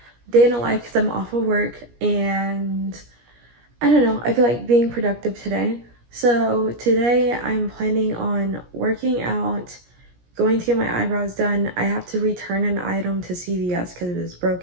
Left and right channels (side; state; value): left; late; 17 ms